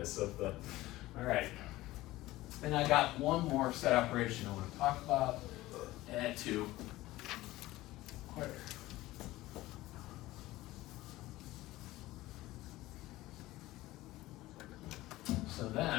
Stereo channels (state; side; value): quieter; right; 17.5 dB